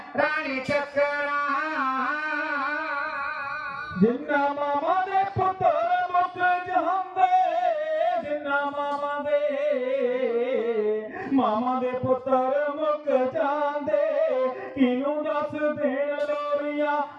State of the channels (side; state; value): both; identical; correlation 1.00